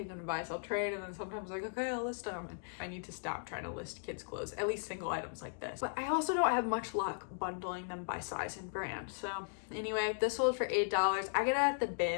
them to buy, sell, trade, and then sometimes like, okay, I'll list them. And I need to stop trying to list kids clothes, at least single items like this. But I also don't have much luck bundling them by size and brand. So anyway, this sold for $8. I get it at the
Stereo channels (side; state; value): right; silent; digital silence